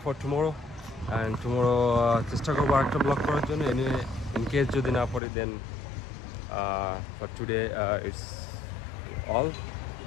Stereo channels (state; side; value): drops out; right; at 5.2 s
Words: for tomorrow. And tomorrow চেষ্টা করবো একটা ব্লগ করার জন্য। এনিওয়ে, ইন কেস যদি না পারি, then for today it's all